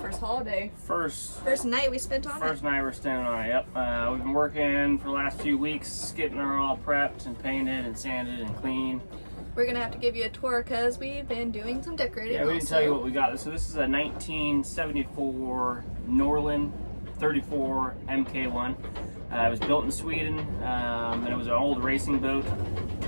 holiday. First night we spent on it. First night we're staying on it, yep. We've been working for the last few weeks, getting her all prepped and painted and sanded and clean. We're gonna have to give you a tour because we've been doing some decorating. Yeah, we didn't tell you what we got. So this is a 1974 Norlin 34 MK1. It was built in Sweden, and it was an old racing boat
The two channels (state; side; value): inverted; both; correlation -1.00